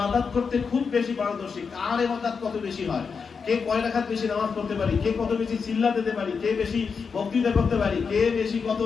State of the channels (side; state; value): right; quieter; 5.6 dB